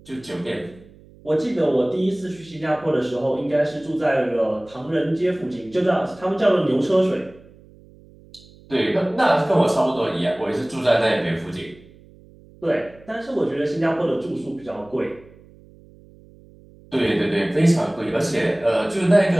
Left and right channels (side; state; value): right; noise; hum, 24 dB below the sound